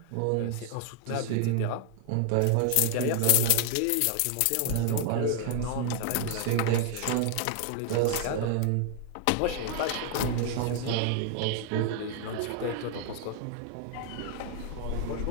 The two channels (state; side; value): different; both; correlation 0.00